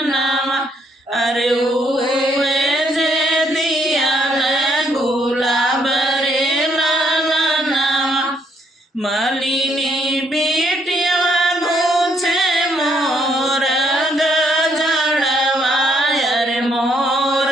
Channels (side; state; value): both; normal; correlation 0.71